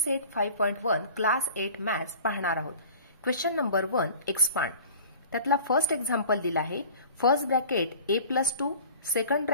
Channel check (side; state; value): both; inverted; correlation -0.43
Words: सेट 5.1 क्लास 8 मॅथ्स पाहणार आहोत। Question number 1 expand. त्यातला फर्स्ट एक्झाम्पल दिला आहे, first bracket a+2 second